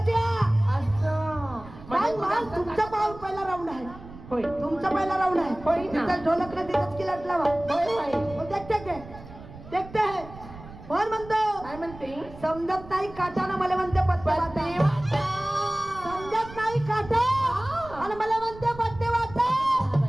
असं तुमचा पाऊल पहिला राऊंड आहे. होय तुमचा पहिला राऊंड आहे. होय तिथं ढोलकला तिथंच की लट लावा. होय होय देखते है. कोण म्हणतो काय म्हणते? समजत नाही काटानं मला म्हणते पत्ते वाटा. समजत नाही काटा आणि मला म्हणते पत्ते वाटा.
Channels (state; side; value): noise; right; rumble, 17 dB below the sound